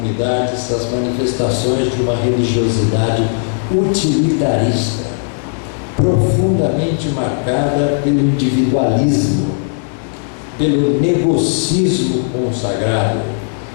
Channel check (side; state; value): right; silent; digital silence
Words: as manifestações de uma religiosidade utilitarista, profundamente marcada pelo individualismo, pelo negocismo consagrado,